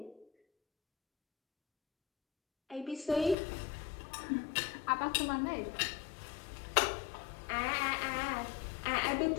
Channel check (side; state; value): right; drops out; at 3.4 s